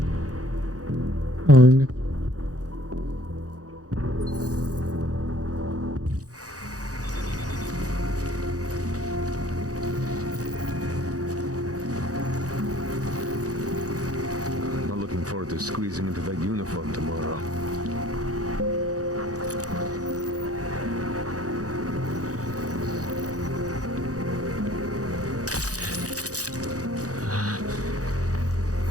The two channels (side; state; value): left; late; 0.67 ms